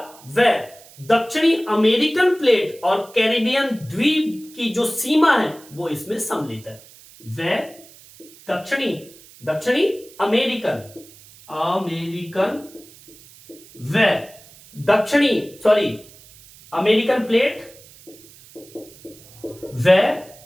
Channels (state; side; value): noise; right; hiss, 23 dB below the sound